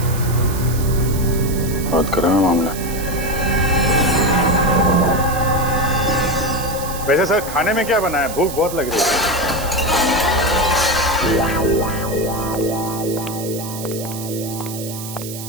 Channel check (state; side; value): noise; right; hiss, 11 dB below the sound